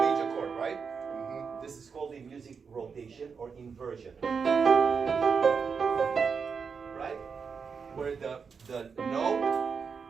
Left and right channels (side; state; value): left; quieter; 5.8 dB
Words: chord, right? Mm-hmm. This is called the music rotation or inversion. Right? Where the note,